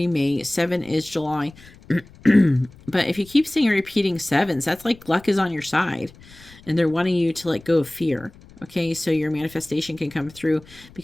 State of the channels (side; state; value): left; noise; rumble, 23 dB below the sound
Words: May, 7 is July. But if you keep seeing repeating 7s, that's like luck is on your side, and they're wanting you to let go of fear. Okay, so your manifestation can come through,